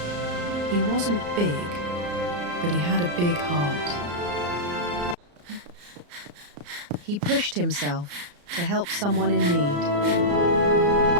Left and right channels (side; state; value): left; late; 34 ms